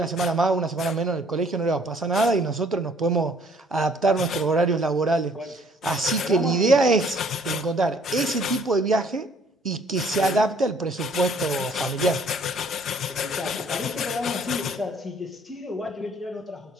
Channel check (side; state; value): both; normal; correlation 0.60